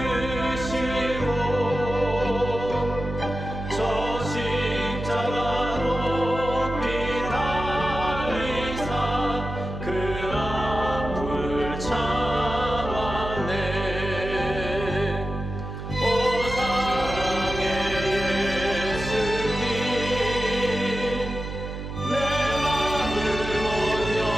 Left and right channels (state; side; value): noise; right; hum, 7 dB below the sound